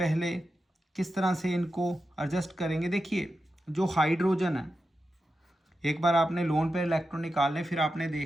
किस तरह से इनको एडजस्ट करेंगे? देखिए जो हाइड्रोजन है, एक बार आपने लोन पेयर इलेक्ट्रॉन निकालने, फिर आपने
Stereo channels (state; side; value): normal; both; correlation 0.90